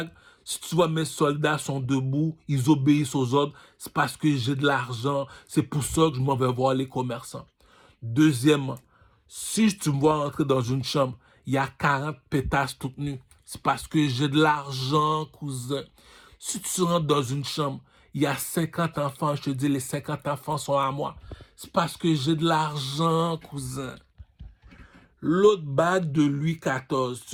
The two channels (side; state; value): both; identical; correlation 1.00